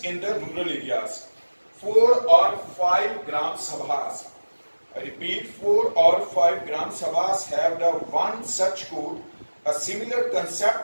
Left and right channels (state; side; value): inverted; both; correlation -1.00